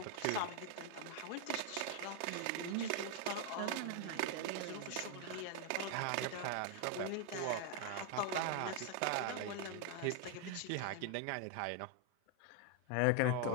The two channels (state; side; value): different; both; correlation 0.01